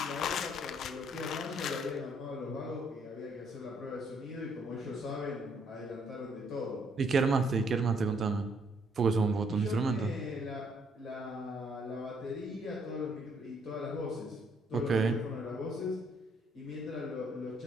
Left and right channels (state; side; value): normal; both; correlation 0.68